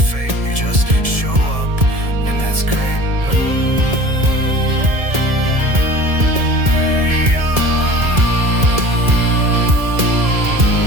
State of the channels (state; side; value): late; left; 1.7 ms